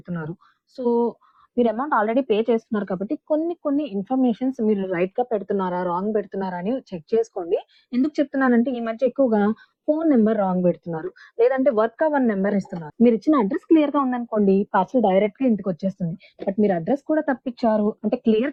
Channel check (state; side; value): identical; both; correlation 1.00